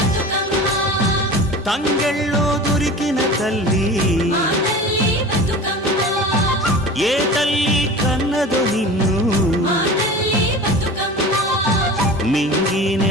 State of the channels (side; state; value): both; normal; correlation 0.35